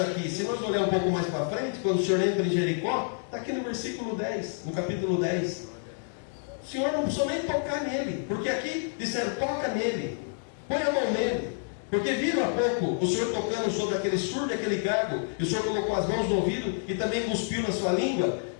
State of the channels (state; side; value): silent; right; digital silence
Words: aqui, se nós olharmos um pouco mais para frente, quando o Senhor entra em Jericó, está aqui no versículo 10, no capítulo 10. O Senhor não precisou nem tocar nele, porque aqui disseram, toca nele, põe a mão nele. Porque viram há pouco o Senhor tocando sobre aquele surdo e aquele gago, e o Senhor colocou as mãos no ouvido e também cuspiu na sua língua,